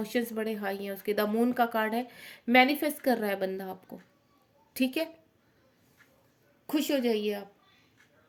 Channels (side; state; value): both; identical; correlation 1.00